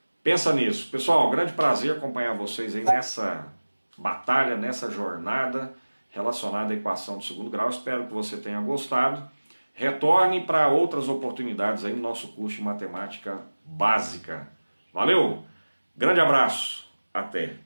Pensa nisso. Pessoal, um grande prazer acompanhar vocês aí nessa batalha, nessa jornada relacionada à equação de segundo grau. Espero que você tenha gostado. Retorne para outras oportunidades aí no nosso curso de matemática básica. Valeu! Grande abraço, até!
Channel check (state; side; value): inverted; both; correlation -1.00